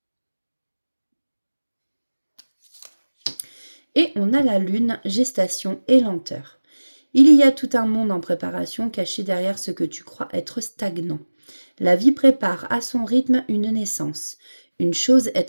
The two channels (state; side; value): inverted; both; correlation -1.00